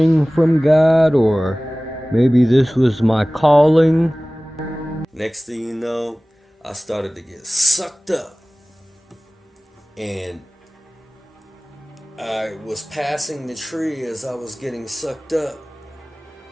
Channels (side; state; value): both; normal; correlation 0.98